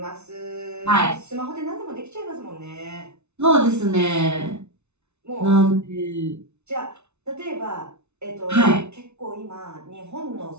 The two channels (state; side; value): late; left; 0.81 ms